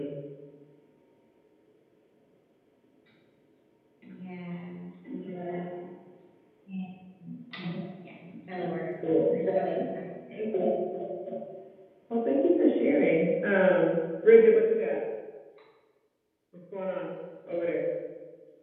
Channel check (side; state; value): both; identical; correlation 1.00